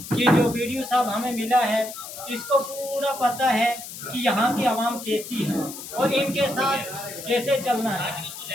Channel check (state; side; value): noise; left; hiss, 11 dB below the sound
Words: कि जो वीडियो साहब हमें मिला है, इसको पूरा पता है कि यहाँ की आवाम कैसी है और इनके साथ कैसे चलना है।